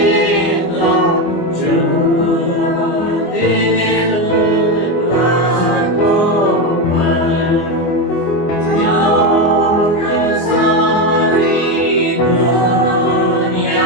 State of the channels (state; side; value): late; right; 24 ms